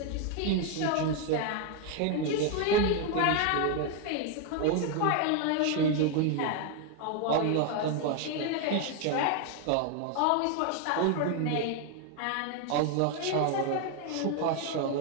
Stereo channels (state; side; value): different; both; correlation 0.01